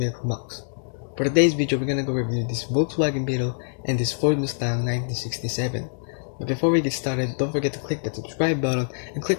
Box. For today's video, we're gonna go review this Volkswagen Beetle and this Ford Mustang 1967. But before we get started, don't forget to click that subscribe button and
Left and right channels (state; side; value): silent; right; digital silence